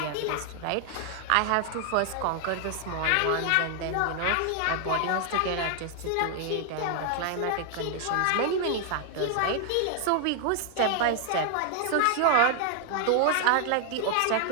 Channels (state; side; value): different; both; correlation 0.00